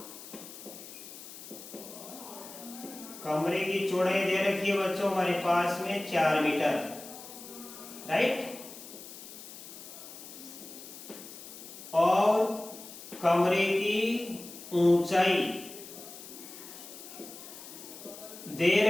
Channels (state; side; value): noise; left; hiss, 14 dB below the sound